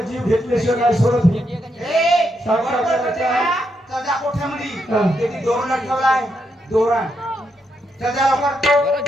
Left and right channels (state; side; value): normal; both; correlation 0.80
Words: घेतल्याशिवाय नाही सोडत ही. सजा कोठ्यामध्ये त्याची दोरण ठेवलाय. दोरण सजा लवकर